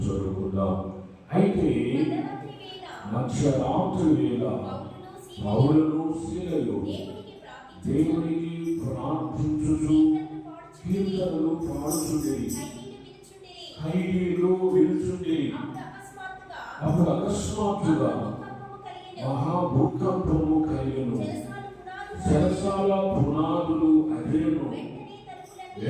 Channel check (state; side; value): identical; both; correlation 1.00